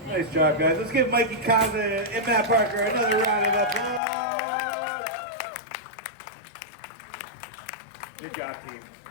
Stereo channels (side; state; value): right; drops out; at 4.0 s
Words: Nice job, guys. Let's give Mikey Kaza and Matt Parker another round of applause. Good job, team.